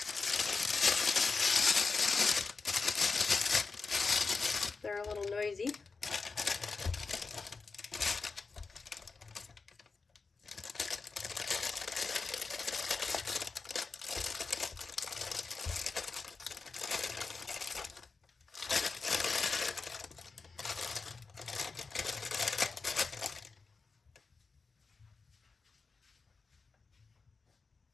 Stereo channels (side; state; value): right; quieter; 4.4 dB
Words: They're a little noisy.